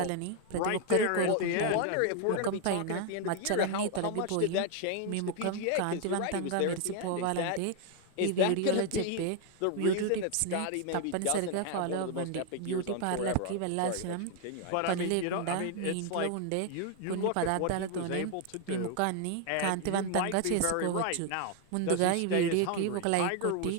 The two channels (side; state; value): both; different; correlation 0.00